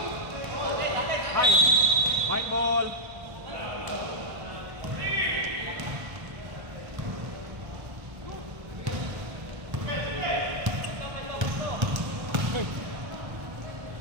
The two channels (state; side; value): late; left; 1.2 ms